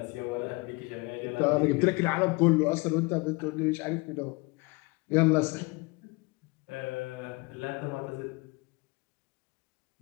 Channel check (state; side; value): quieter; right; 27.0 dB